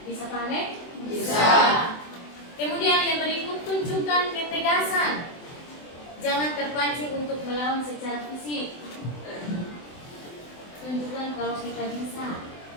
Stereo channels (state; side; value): late; right; 24 ms